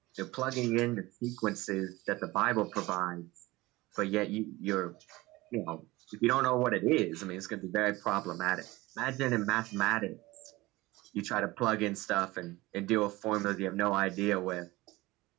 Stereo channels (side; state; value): left; quieter; 20.0 dB